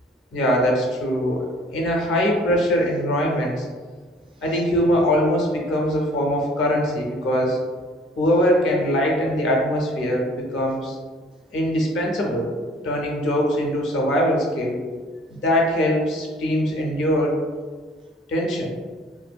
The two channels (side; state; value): both; normal; correlation 0.53